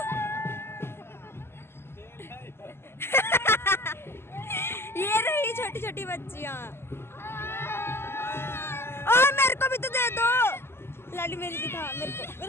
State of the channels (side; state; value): right; late; 0.12 ms